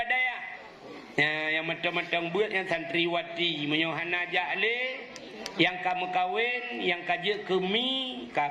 Yang menteng-menteng buat yang santriwati. Menyo hana jale yang kamu kawin yang kaje kemi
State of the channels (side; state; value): both; identical; correlation 1.00